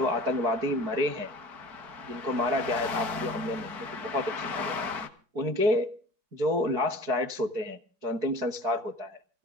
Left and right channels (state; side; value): late; left; 4.6 ms